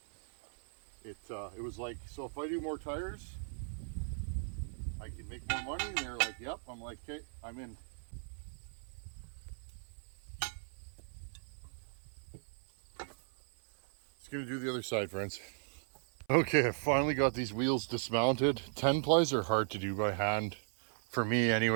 it was like, so if I do more tires, I can make more money. And they're like, yep. I'm like, okay, I'm in. Just gonna do the other side, friends. Okay, I finally got these wheels dismounted. 10 plies are hard to do by hand. For me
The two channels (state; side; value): silent; left; 53 dB below the other